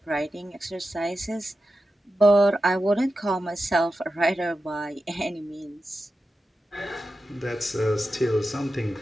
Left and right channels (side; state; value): both; normal; correlation 0.91